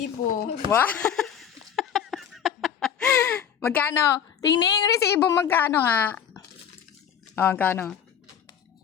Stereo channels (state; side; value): quieter; right; 8.6 dB